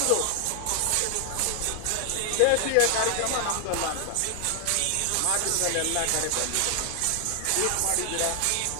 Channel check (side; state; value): both; different; correlation 0.00